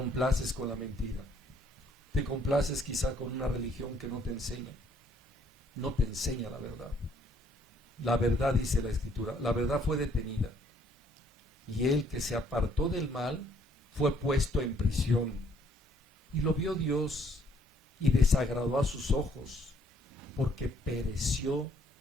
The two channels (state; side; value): normal; both; correlation 0.65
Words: con la mentira. Te complaces quizá con una religión que no te enseña la verdad. La verdad, dice la Escritura, la verdad fue detenida. Y el que se apartó del mal fue puesto en prisión. Y lo vio Dios y desagradó a sus ojos, porque pereció